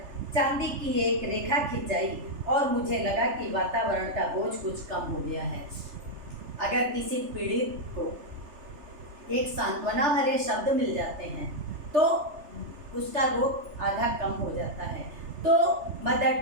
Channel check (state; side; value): late; left; 3.4 ms